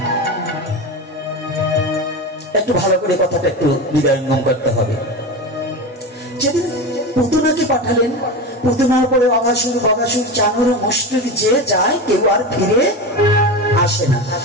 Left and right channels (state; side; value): normal; both; correlation 0.23